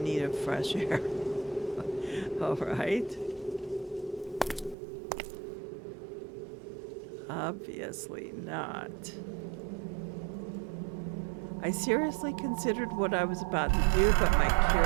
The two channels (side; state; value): left; drops out; at 4.8 s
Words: need of fresh air. All right. Obviously not. I seriously considered what I was about to do, but my